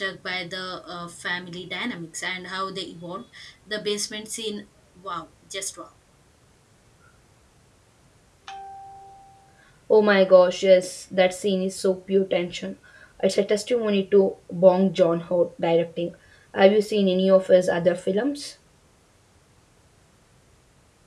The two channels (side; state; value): both; identical; correlation 1.00